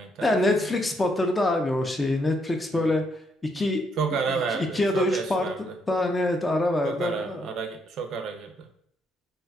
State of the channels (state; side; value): normal; both; correlation 0.75